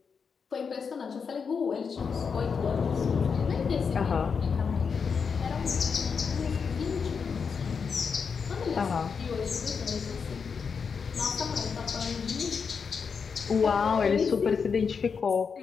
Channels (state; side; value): quieter; right; 5.9 dB